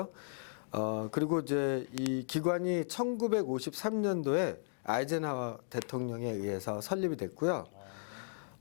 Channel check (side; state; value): right; silent; digital silence